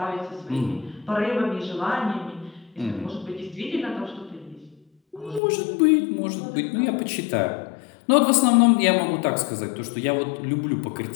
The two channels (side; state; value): right; drops out; at 5.4 s